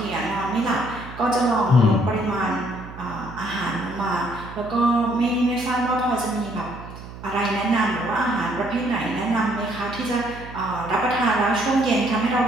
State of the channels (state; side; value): noise; right; hum, 14 dB below the sound